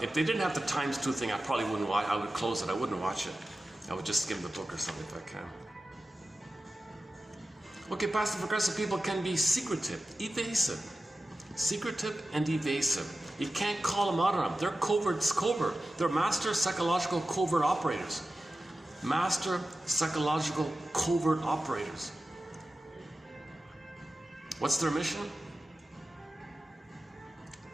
If they didn't have the ×2 thing, I probably wouldn't watch. I would close it. I wouldn't watch it. I would just skim the book or something if I can. Okay, passive-aggressive people can be secretive, evasive. Secretive and evasive. You can't call them out on them. They're covert. They're master psychological covert operators. Master psychological covert operators. What's their mission?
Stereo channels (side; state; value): both; normal; correlation 0.94